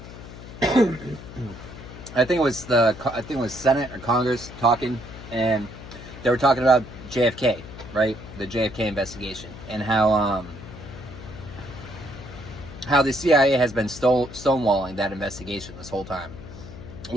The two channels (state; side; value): noise; left; hum, 14 dB below the sound